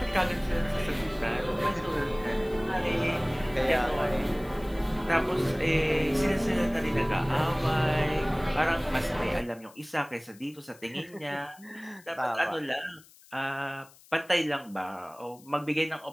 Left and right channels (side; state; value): left; noise; hiss, 25 dB below the sound